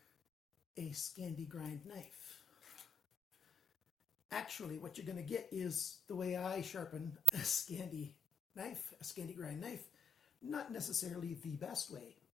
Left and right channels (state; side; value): normal; both; correlation 0.60